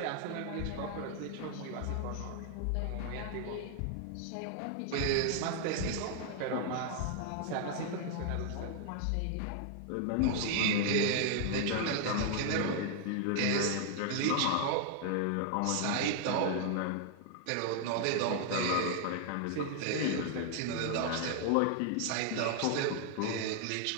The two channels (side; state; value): both; different; correlation 0.00